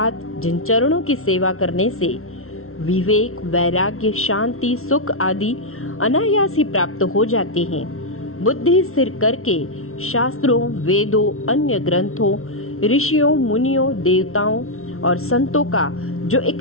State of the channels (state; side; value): late; right; 0.62 ms